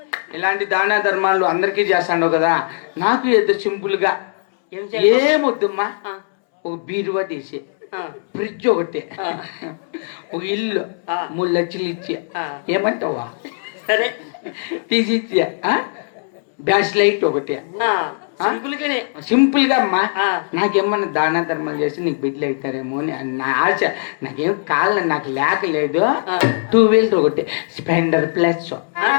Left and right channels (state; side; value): silent; right; 66 dB below the other